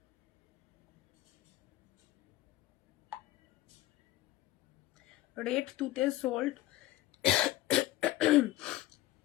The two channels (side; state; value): right; quieter; 16.1 dB